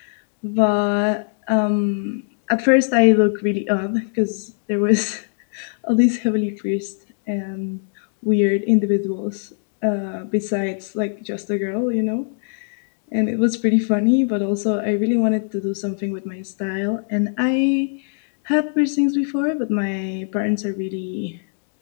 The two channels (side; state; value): right; silent; digital silence